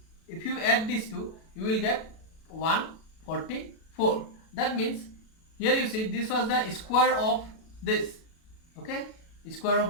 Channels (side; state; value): right; late; 37 ms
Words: you will get 144. That means here you see, this was the square of this. Okay, square